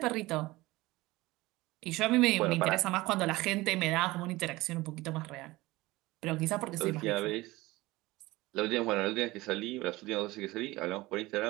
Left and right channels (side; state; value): left; quieter; 19.9 dB